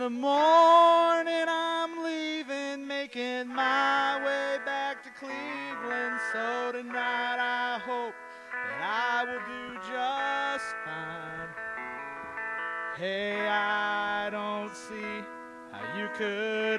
morning I'm leaving, making my way back to Cleveland. So tonight I hope that I will do just fine. Hey, I don't see how you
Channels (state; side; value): identical; both; correlation 1.00